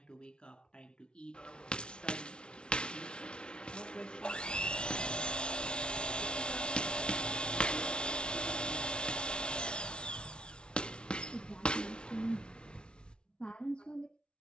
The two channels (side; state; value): right; late; 0.056 ms